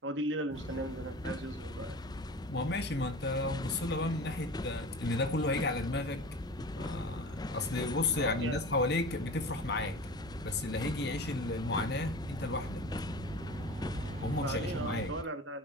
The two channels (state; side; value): normal; both; correlation 0.36